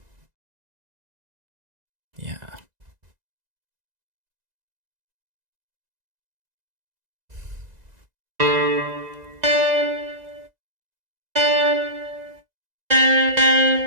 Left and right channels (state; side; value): late; left; 2.0 ms